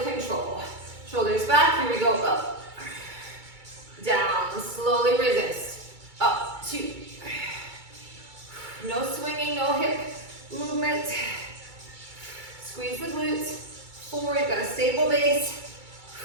control. Shoulders back, here we go, up, down, slowly resist, up, 2, no swinging, no hip movement, squeeze the glutes, 4, you've got a stable base,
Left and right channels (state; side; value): late; left; 2.3 ms